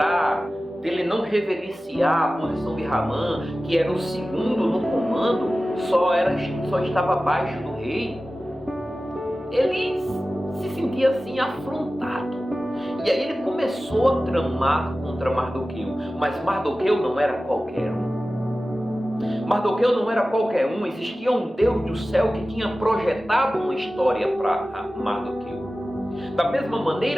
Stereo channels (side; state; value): both; normal; correlation 0.96